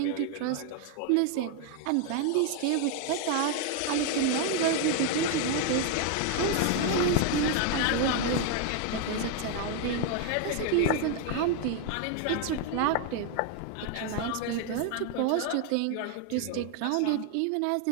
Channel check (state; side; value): different; both; correlation 0.00